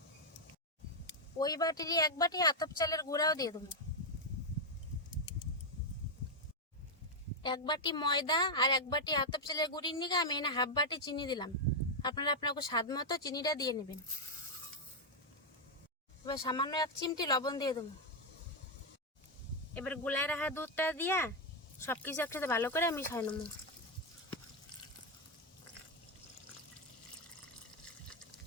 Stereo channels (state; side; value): normal; both; correlation 0.02